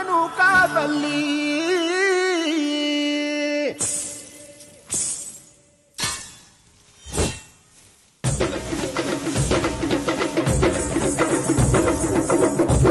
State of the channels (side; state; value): both; identical; correlation 1.00